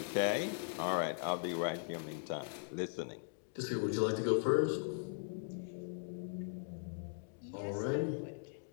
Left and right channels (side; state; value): right; silent; digital silence